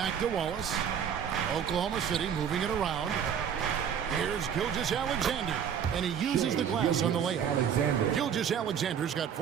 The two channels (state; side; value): quieter; left; 8.2 dB